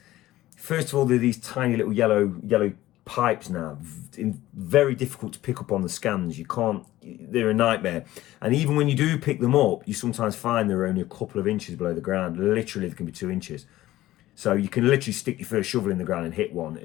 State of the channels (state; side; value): quieter; right; 15.6 dB